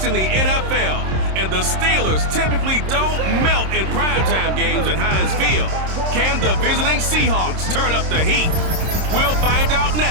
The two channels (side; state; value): left; late; 26 ms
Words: in the NFL, and the Steelers typically don't melt in primetime games at Heinz Field. Can the visiting Seahawks turn up the heat? We'll find out